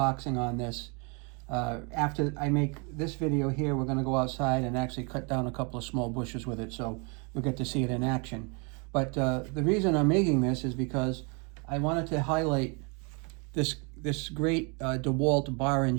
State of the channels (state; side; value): quieter; left; 33.4 dB